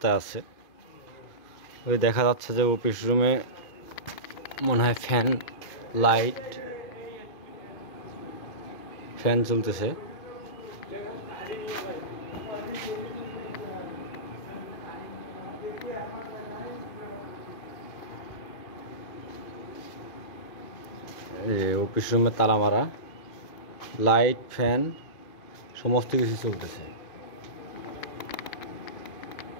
আছে। ওই দেখা যাচ্ছে যে অফিস রুমে মনে হয় ফ্যান চলতেছে। অফিস রুমে তালা মারা, লাইট ফ্যান সমস্ত কিছু চলতেছে।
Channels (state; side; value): late; right; 2.5 ms